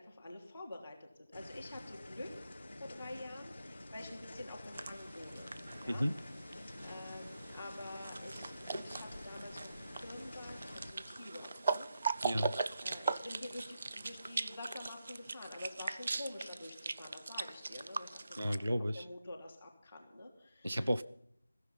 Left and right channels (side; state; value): both; inverted; correlation -0.86